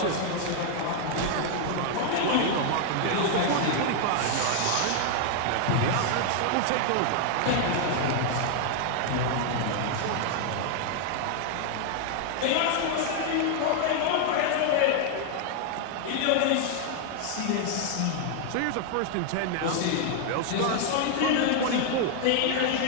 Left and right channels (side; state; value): both; different; correlation 0.00